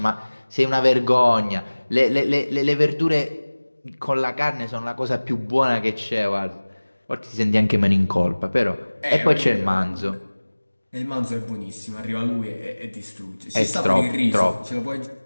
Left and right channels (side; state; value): both; inverted; correlation -1.00